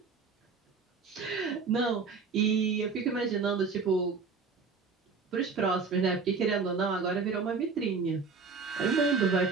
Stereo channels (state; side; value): quieter; left; 4.8 dB